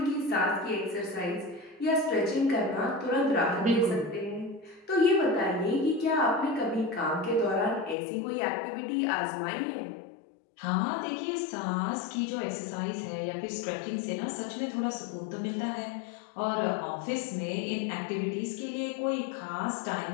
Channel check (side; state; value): right; drops out; at 8.0 s